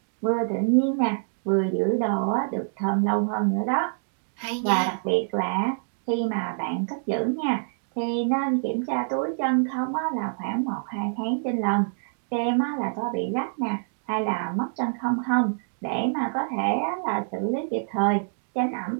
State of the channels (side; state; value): left; silent; digital silence